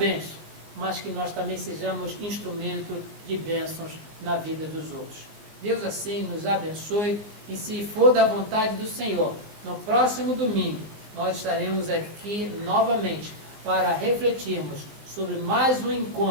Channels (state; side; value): late; left; 19 ms